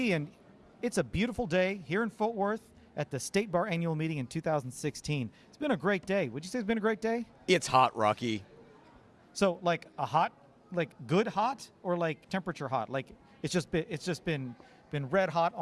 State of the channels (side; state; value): both; identical; correlation 1.00